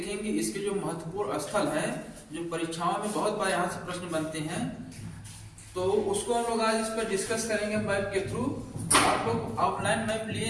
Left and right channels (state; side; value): identical; both; correlation 1.00